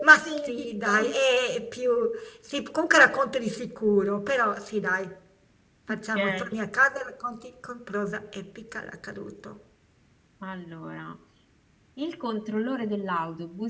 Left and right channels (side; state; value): both; identical; correlation 1.00